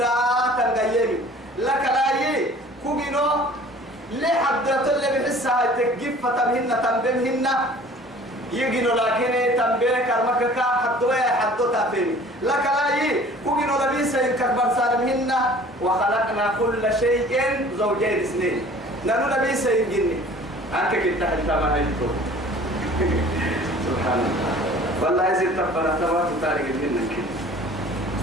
تنقيني لك لا كوجنو ليه حدث اللي بحسها تجيب فتمهن تنبمهن يجينو لكن تنبيه كرمك حدوا حدوا تفهم لك لا كوجنو لبيس ينكبر سالمهن وخلقنا كل شيء زوجين اثنين نانو لبيس يجيني أنت كنت حتى ما هيتو سبحان الله والله يزيد تبنا تبارك تاريخ منك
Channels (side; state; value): both; normal; correlation 0.48